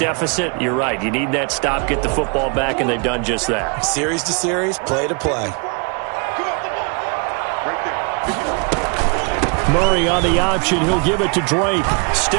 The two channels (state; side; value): quieter; left; 33.9 dB